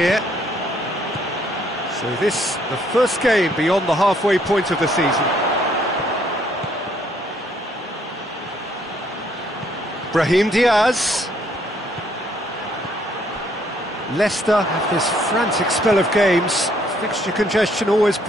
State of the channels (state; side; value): normal; both; correlation 0.67